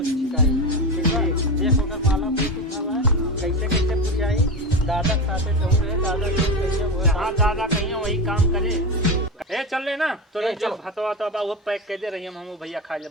शिकायत ठीक है एक होकर माला पे कुछ हवा कैसे कैसे पूरी आई दादा साथे तो रहे दादा के कैसे वो जहाँ दादा कहीं वही काम करे ए चल ले ना तो ए, जब चलो। भतवा तो वो पैक कर दे रही हम भैया खा ले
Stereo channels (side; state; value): both; normal; correlation 0.20